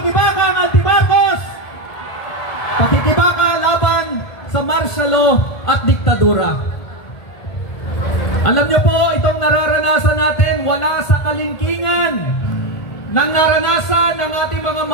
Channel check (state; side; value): late; right; 1.8 ms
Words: anti-Marcos! Pakikibaka laban sa martial law at diktadura. Alam niyo po, itong nararanasan natin wala sa kalingkingan ng naranasan ng ating mga